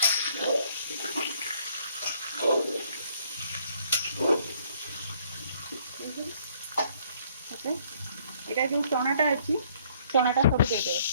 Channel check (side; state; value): both; inverted; correlation -0.63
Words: एटा जो चनाटा अच्छी चनाटा सब दे दे